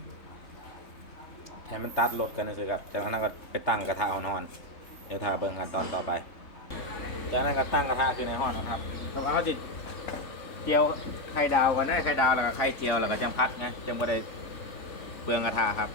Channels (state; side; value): late; right; 3.6 ms